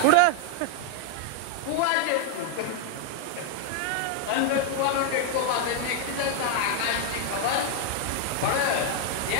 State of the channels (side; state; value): both; different; correlation 0.00